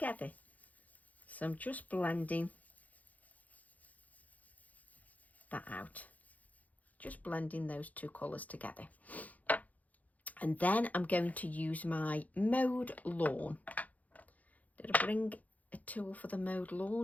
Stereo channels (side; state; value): right; late; 0.076 ms